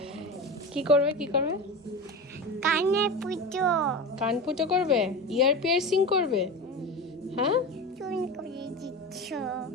কি করবে কি করবে? কানে পুজো কান ফুটো করবে, ইয়ার পিয়ার্সিং করবে। হ্যাঁ চুন করে দিচ্ছ।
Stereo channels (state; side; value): normal; both; correlation 0.26